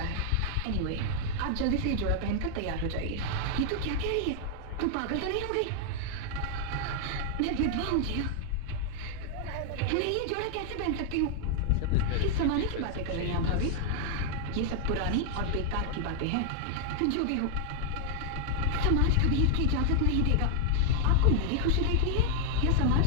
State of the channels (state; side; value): different; both; correlation 0.00